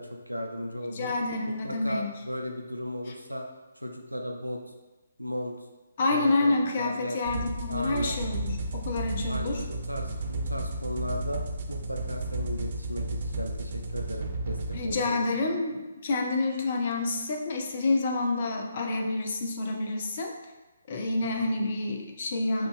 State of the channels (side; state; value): both; inverted; correlation -0.77